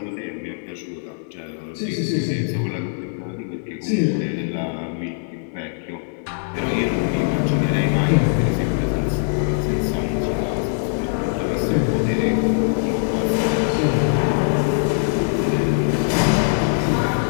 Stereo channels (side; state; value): right; silent; 64 dB below the other